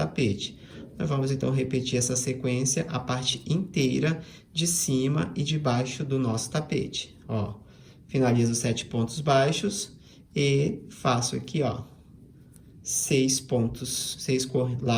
Nós vamos, então, repetir essa sequência, a parte inteira de cima e de baixo do nosso tapete. Ó, finalizo 7 pontos baixos e faço aqui, ó, 6 pontos, 6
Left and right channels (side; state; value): both; identical; correlation 1.00